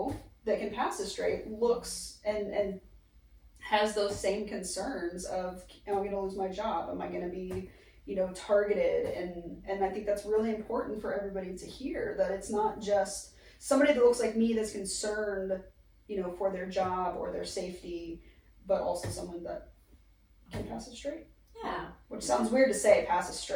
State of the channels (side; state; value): both; identical; correlation 1.00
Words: that can pass as straight looks and has those same concerns of, am I going to lose my job? Am I going to be, targeted? And I think that's really important for everybody to hear, that it's not just somebody that looks like me that's concerned, for their job or their safety, but also someone that can pass as straight. Yeah. Which sounds weird to say, pass as